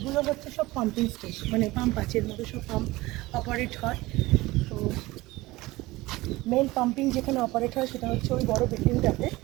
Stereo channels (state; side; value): quieter; left; 19.8 dB